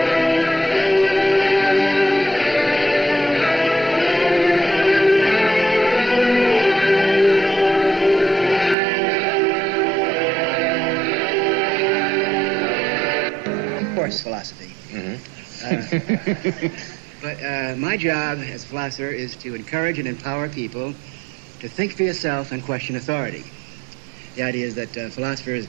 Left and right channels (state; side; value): drops out; left; at 8.8 s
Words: Of course, philosophy. But my job as a philosopher is to encourage and empower people to think for yourself and question authority. The idea is that philosophers